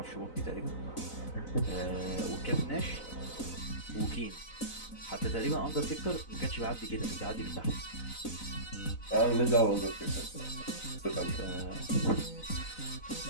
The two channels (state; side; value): late; right; 4.0 ms